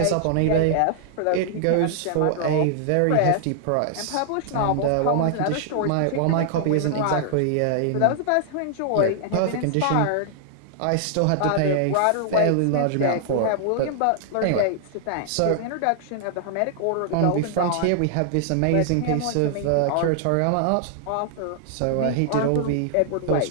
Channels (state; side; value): different; both; correlation -0.01